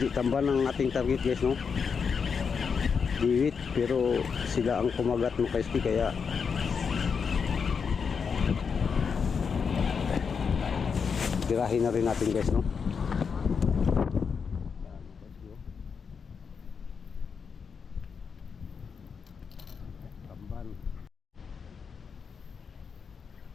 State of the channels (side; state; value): right; quieter; 6.0 dB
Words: tamban ang ating target guys no, diwit, pero sila ang kumagat mga kayuski kaya tirahin na rin natin guys no. Tamban.